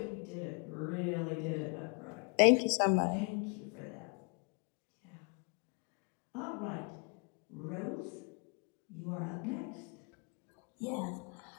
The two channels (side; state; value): right; quieter; 36.4 dB